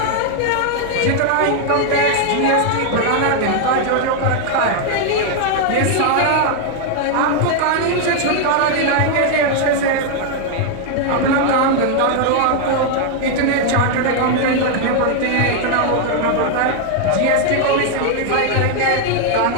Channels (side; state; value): both; different; correlation 0.00